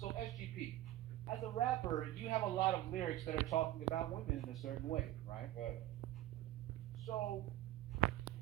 SGP, as a rapper, you have a lot of lyrics that are talking about women in a certain way, right? Right. So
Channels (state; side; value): quieter; left; 14.7 dB